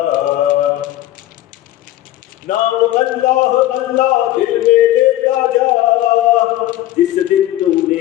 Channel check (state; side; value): quieter; right; 14.5 dB